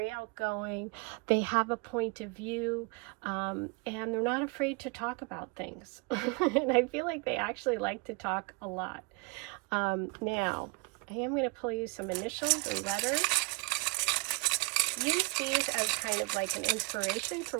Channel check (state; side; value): quieter; left; 29.9 dB